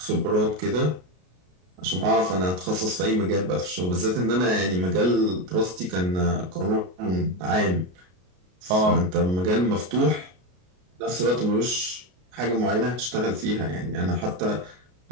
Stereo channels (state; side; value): late; left; 33 ms